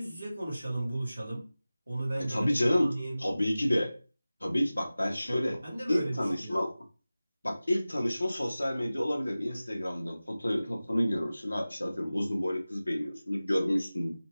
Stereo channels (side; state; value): both; inverted; correlation -0.97